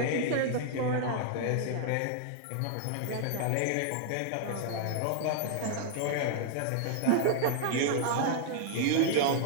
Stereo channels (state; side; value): different; both; correlation -0.01